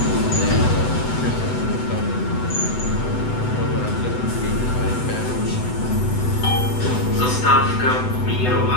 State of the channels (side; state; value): right; late; 8.0 ms